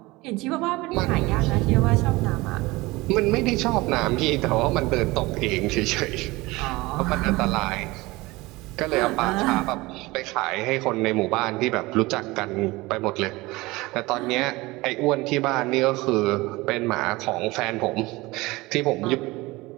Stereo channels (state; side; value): quieter; left; 21.4 dB